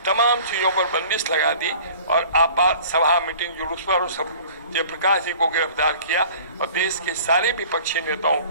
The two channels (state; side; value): inverted; both; correlation -0.47